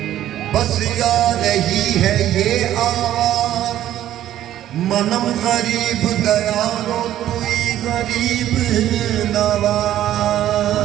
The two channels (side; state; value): left; quieter; 12.4 dB